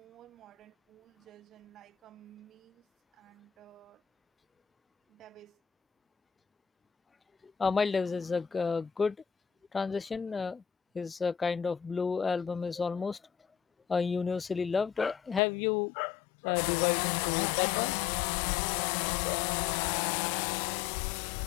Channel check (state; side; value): drops out; right; at 15.4 s